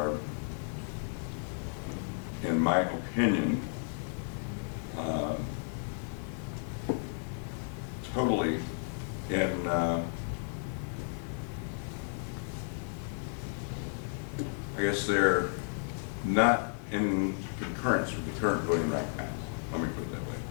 in my opinion, totally in I guess they're not in concurrence with the current Voting Rights Act. Let me put it that way.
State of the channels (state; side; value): silent; right; 56 dB below the other